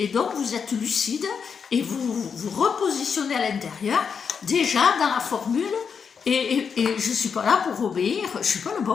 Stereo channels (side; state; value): right; quieter; 6.3 dB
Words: donc vous êtes lucide, et vous repositionnez à l'intérieur, déjà dans la formule. Et je ne suis pas là pour obéir, je ne suis pas le